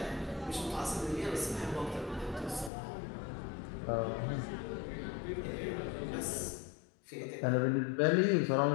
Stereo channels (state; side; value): drops out; right; at 2.7 s